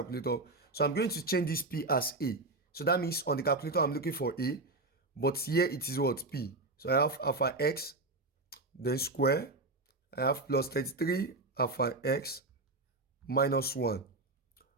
So I'm going to change this p as a. So that means on the calculator I'm looking for a, but here it is what? P. So I have alpha x, then square. I have plus 33 alpha x minus 1.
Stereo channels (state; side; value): quieter; left; 3.1 dB